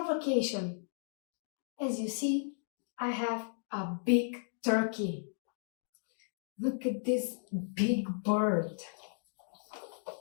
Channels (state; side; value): silent; right; digital silence